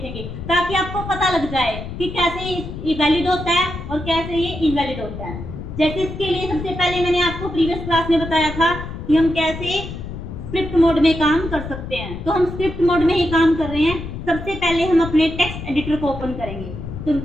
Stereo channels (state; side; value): noise; left; rumble, 9 dB below the sound